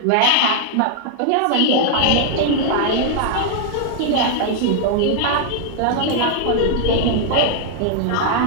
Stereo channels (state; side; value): different; both; correlation -0.01